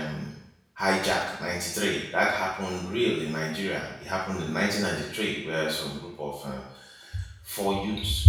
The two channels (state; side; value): identical; both; correlation 1.00